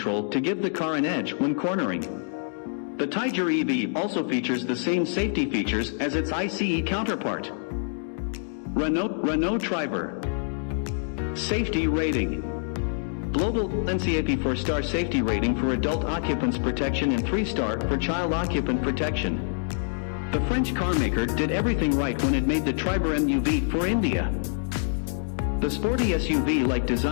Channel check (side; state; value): right; silent; digital silence